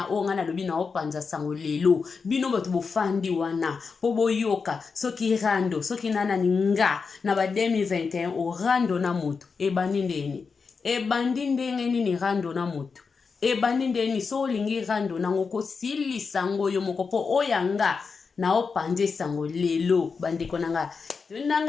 o nga nalobi na opanza sango lelo bino bato bofandi wana po boyoka soki rando soki nanani nga na ba 2021 orando na moto ebandi ndenge nini rando na moto ebandi ndeni so olingi rando nango kosilisa ngo yo moko po oyanga na opanze sango lelo bandeko nanga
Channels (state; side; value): quieter; right; 5.1 dB